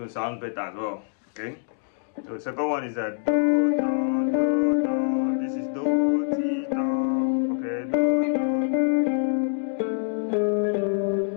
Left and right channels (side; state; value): right; silent; digital silence